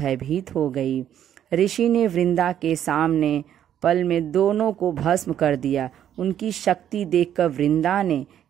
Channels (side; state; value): left; quieter; 10.4 dB